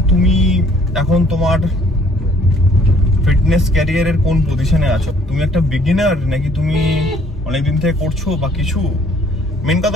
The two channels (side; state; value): both; normal; correlation 0.59